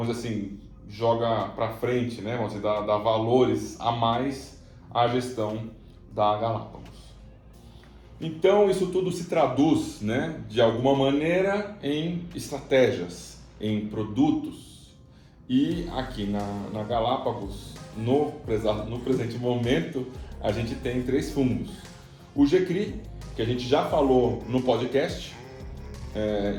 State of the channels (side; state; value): both; identical; correlation 1.00